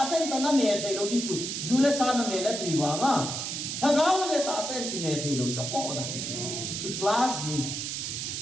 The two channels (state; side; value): noise; right; hiss, 4 dB below the sound